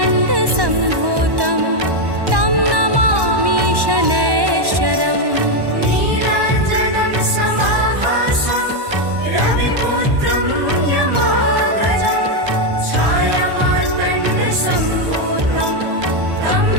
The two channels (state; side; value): late; left; 1.1 ms